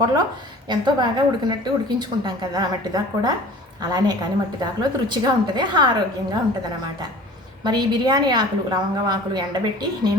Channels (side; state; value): both; normal; correlation 0.44